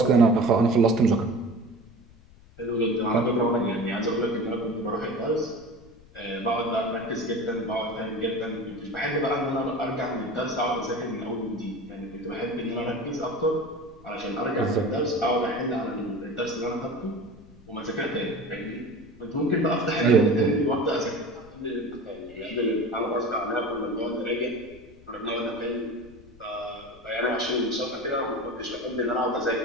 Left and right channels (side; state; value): left; noise; rumble, 23 dB below the sound